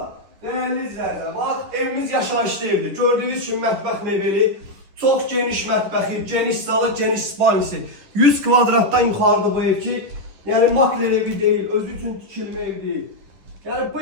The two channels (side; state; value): left; late; 10 ms